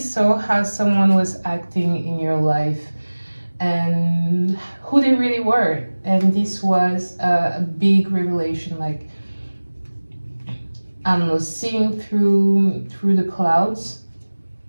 how someone was acting in your life and who they really were, and this was a big revelation. Like I don't know, seeing through the clouds.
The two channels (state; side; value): inverted; both; correlation -1.00